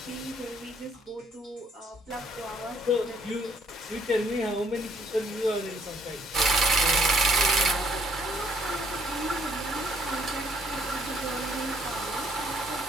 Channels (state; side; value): normal; both; correlation 0.65